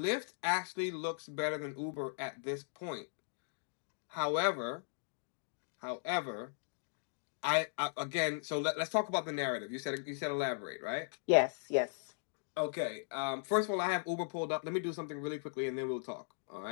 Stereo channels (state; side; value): silent; right; digital silence